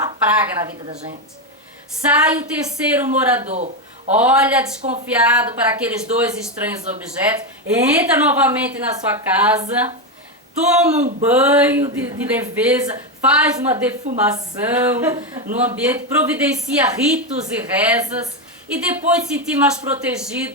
praga na vida da gente. Sai o terceiro morador. Olha desconfiado para aqueles 2 estranhos objetos. Entra novamente na sua casa. Toma um banho de leveza. Faz uma defumação no ambiente. Providencia ritos e rezas. E depois de se sentir mais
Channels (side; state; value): both; normal; correlation 0.09